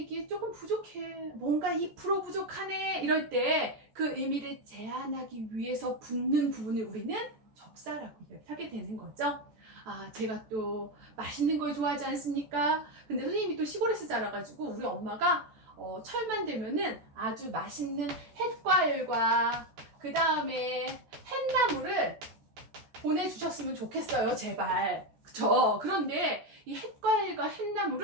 조금 부족해. 뭔가 2% 부족하네. 이럴 때 그 의미를 제한하기 위해서 붙는 부분을 우리는 접사라고 이야기하게 되는 거죠. 제가 또 맛있는 걸 좋아하지 않습니까? 근데 선생님이 또 시골에서 자라가지고 우리 엄마가 철만 되면은 아주 맛있는 햇과일과 그 다음에 햇나물을 보내주셨으면 좋겠어요, 제발. 그쵸? 그런데 이 햇과일과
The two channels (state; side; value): late; left; 14 ms